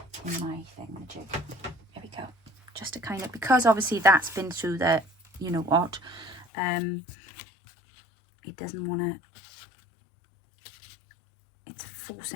in my thingamajig. There we go. Just to kind of, because obviously that's been through the, you know what, it doesn't want to, it's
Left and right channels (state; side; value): drops out; right; at 6.5 s